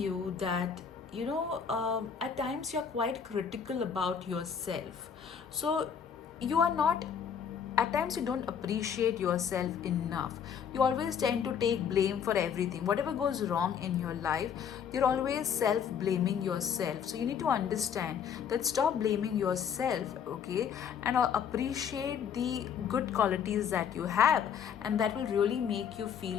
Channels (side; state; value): right; quieter; 7.5 dB